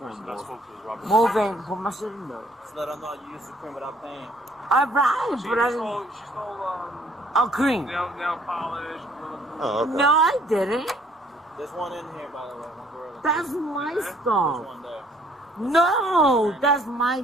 Move in, put my shit in there. Just let her know you used the cream without paying. Alright, but I didn't. She stole A cream. nail polish. Oh, okay. No, I didn't. There's one in here, by the way. One gorilla. That's my There's stuff. one there. No, that's my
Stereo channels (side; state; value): both; normal; correlation 0.61